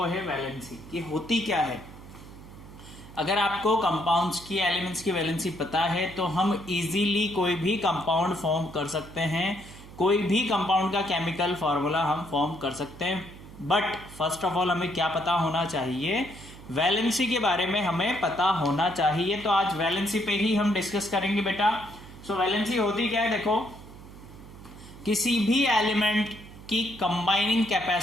है वैलेंसी। ये होती क्या है। अगर आपको कंपाउंड्स की, एलिमेंट्स की वैलेंसी पता है तो हम इजीली कोई भी कंपाउंड फॉर्म कर सकते हैं, कोई भी कंपाउंड का केमिकल फार्मूला हम फॉर्म कर सकते हैं। बट फर्स्ट ऑफ ऑल हमें क्या पता होना चाहिए, वैलेंसी के बारे में हमें पता होना चाहिए। तो आज वैलेंसी पे ही हम डिस्कस करेंगे बेटा। सो वैलेंसी होती क्या है, देखो किसी भी एलिमेंट की कंबाइनिंग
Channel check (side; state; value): right; noise; hum, 17 dB below the sound